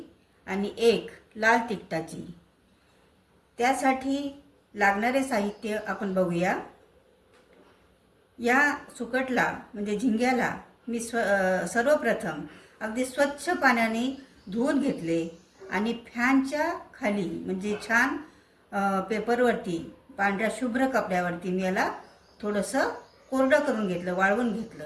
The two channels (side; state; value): both; identical; correlation 1.00